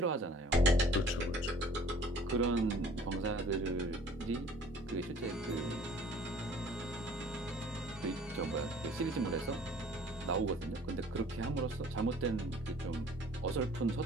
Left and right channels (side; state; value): both; normal; correlation 0.51